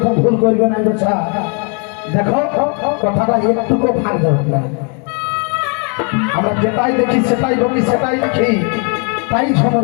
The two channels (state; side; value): quieter; right; 37.9 dB